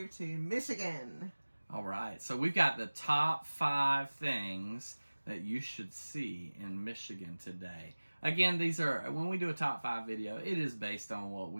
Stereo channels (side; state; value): both; inverted; correlation -1.00